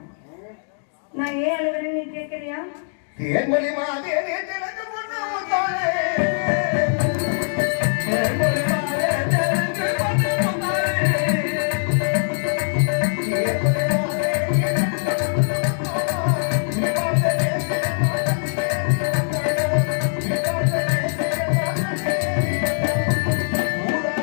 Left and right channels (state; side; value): silent; right; digital silence